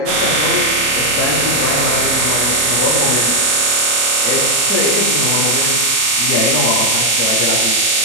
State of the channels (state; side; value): late; left; 3.8 ms